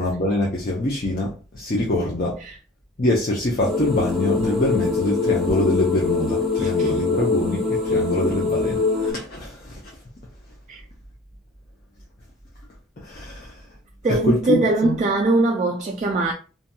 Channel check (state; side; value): normal; both; correlation 0.44